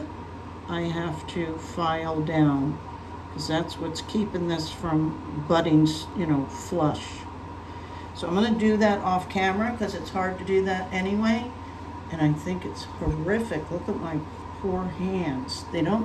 I have to file down, because that's what's keeping this from butting, flush. So I'm going to do that off camera because it's hard to do that anyway. And I think it's horrific. Look at my poor hands. They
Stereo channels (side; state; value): both; identical; correlation 1.00